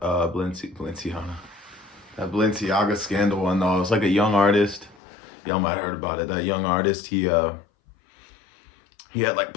Balenciaga scandal one though. It's like a young artist. Y'all might have heard about it. That young artist, he had like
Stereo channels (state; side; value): drops out; right; at 5.0 s